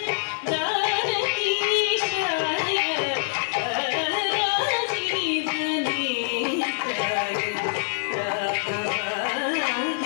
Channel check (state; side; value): silent; right; digital silence